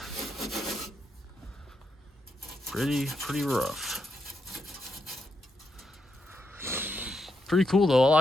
Pretty rough. Pretty cool though, I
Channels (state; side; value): normal; both; correlation 0.82